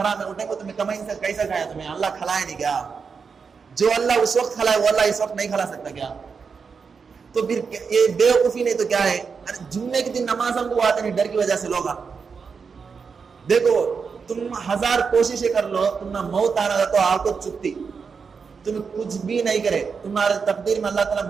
میں اٹھے کو تمہیں کمائی سے کیسا کھایا, تمہیں اللہ کھلائے نہیں کیا؟ جو اللہ اس وقت کھلائے وہ اللہ اس وقت نہیں کھلا سکتا کیا؟ تو پھر یہ بیوقوفی نہیں تو کیا ہے؟ جمعے کے دن نماز ہم کو آتے نہیں ڈر کی وجہ سے لوگ. دیکھو تم 1000 کوششیں کر لو, تم نہ موت آنا تو آپ کو چپتی, تم کچھ بھی نہیں کرے, تمہارے تقدیر میں اللہ تعالیٰ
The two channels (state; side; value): quieter; left; 5.6 dB